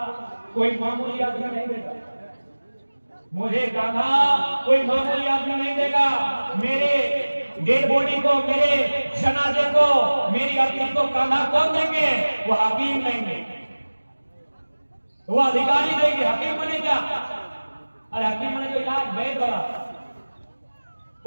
कोई मामूली आदमी नहीं देगा, मुझे कान्हा कोई मामूली आदमी नहीं देगा। मेरे डेड बॉडी को, मेरे जनाजे को, मेरी अर्थी को कान्हा कौन देंगे? वो हकीम देंगे, वो अधिकारी देंगे। हकीम बने क्या? अरे हकीम बने तो इलाज वैद बड़ा,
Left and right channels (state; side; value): inverted; both; correlation -1.00